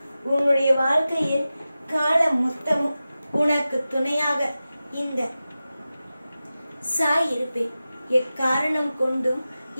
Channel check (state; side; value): inverted; both; correlation -0.94